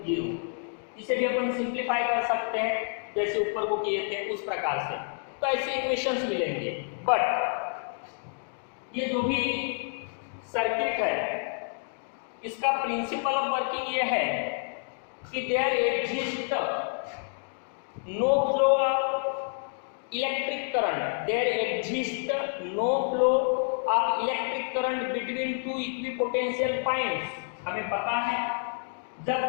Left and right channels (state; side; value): silent; right; 59 dB below the other